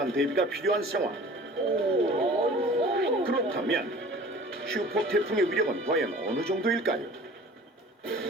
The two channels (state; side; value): normal; both; correlation 0.45